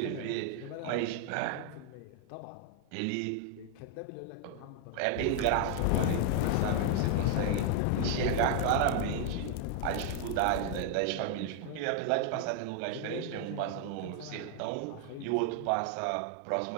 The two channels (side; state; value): both; different; correlation 0.00